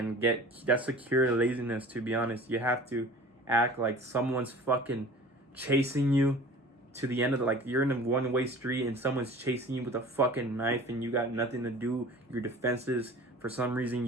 that's a cure to laziness, to be honest. You have to act like someone's fucking chasing you to the end of like you're in a one-way street and someone's chasing you with a fucking knife and you got nothing to do. Your defenses, for some reason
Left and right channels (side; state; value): both; normal; correlation 0.42